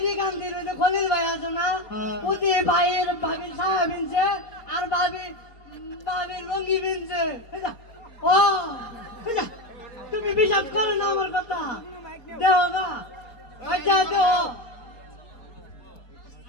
গান্ধীর ওই যে খলিল ভাই আছে না ওতে ভাইয়ের ভাবির সায়া বিনছে আর ভাবির লঙ্গি বিনছে ও তুমি বিশ্বাস করো না আমার কথা দেও না আচ্ছা দেও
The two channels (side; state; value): right; late; 4.3 ms